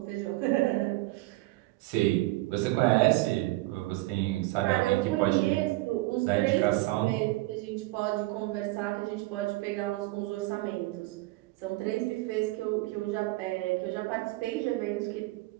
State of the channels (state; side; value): quieter; left; 20.2 dB